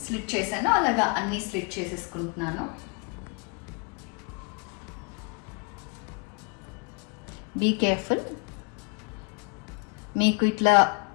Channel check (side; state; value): right; quieter; 32.6 dB